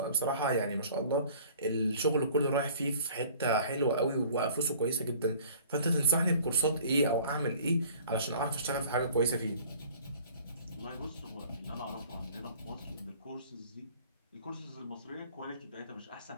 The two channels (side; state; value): both; inverted; correlation -0.50